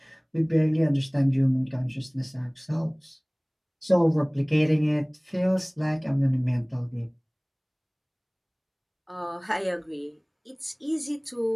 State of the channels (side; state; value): both; identical; correlation 1.00